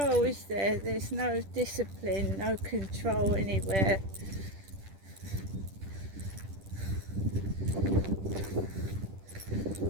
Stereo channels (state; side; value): late; left; 10 ms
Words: is there? There's no discipline, no control anywhere.